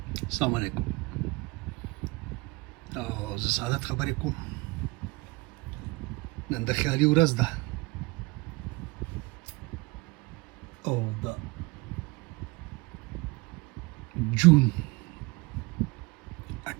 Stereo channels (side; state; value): left; quieter; 24.5 dB